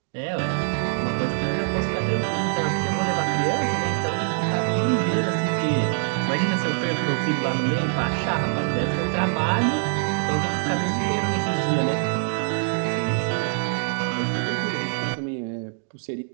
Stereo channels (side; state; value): left; silent; 62 dB below the other